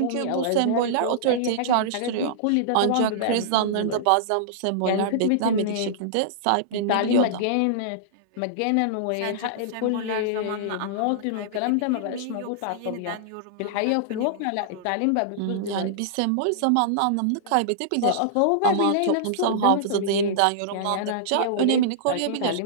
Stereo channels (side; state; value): both; different; correlation -0.02